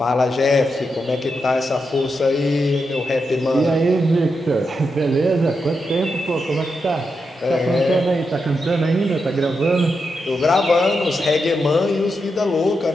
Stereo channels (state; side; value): normal; both; correlation 0.86